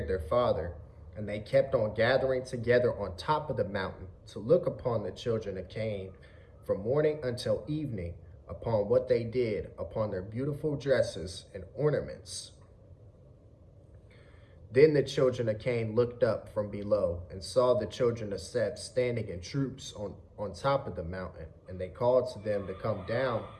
their father, and they kept on gathering together on top of the mountain to look upon the children of Cain from morning until evening, upon what they did, upon their beautiful dresses and ornaments. Then the children of Cain looked up from below and saw the children of Seth standing in troops on top of the mountain, and they called to them to come down.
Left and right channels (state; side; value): identical; both; correlation 1.00